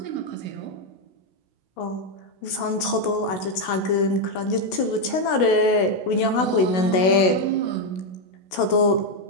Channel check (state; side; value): late; right; 16 ms